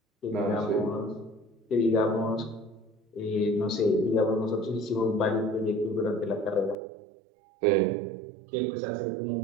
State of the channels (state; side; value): drops out; left; at 6.8 s